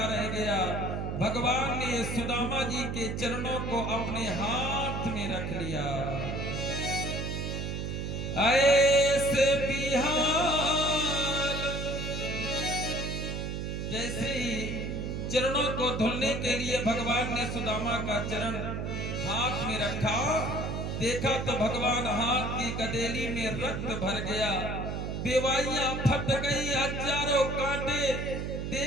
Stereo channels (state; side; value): noise; right; hum, 3 dB below the sound